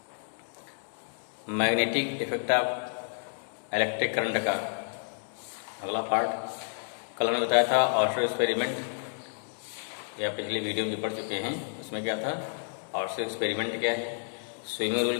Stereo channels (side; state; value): right; silent; digital silence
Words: magnetic effect of electric current का अगला पार्ट। कल हमने बताया था ऑर्शर एक्सपेरिमेंट, या पिछली वीडियो में जो पढ़ चुके हैं उसमें क्या था, ऑर्शर एक्सपेरिमेंट क्या है, स्विमिंग रूल